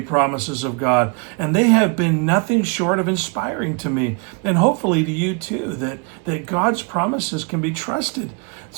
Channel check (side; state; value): left; quieter; 34.0 dB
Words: promises of God, and they have been nothing short of inspiring to me, and hopefully to you too, that God's promises can be trusted.